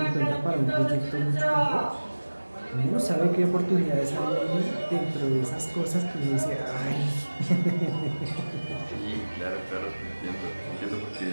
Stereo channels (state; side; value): inverted; both; correlation -1.00